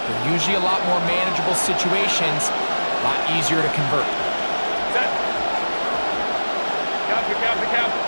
usually a lot more manageable situations, a lot easier to convert.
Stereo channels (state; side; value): inverted; both; correlation -1.00